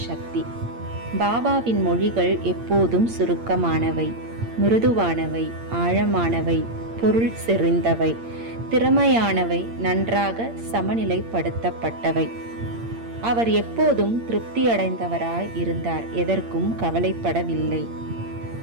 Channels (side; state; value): left; late; 8.7 ms